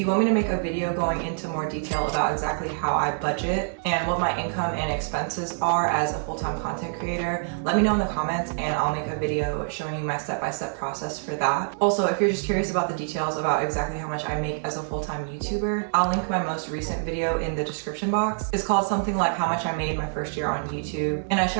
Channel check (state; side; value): silent; left; digital silence